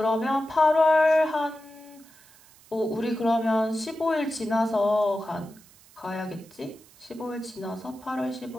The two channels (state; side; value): noise; right; hiss, 26 dB below the sound